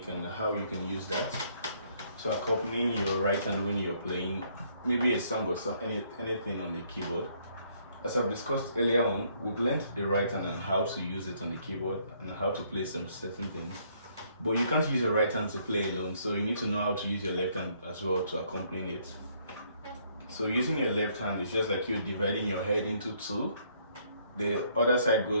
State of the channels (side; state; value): both; inverted; correlation -0.67